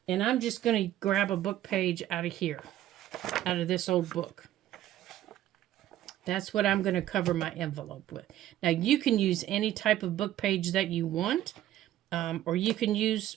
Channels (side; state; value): left; quieter; 13.1 dB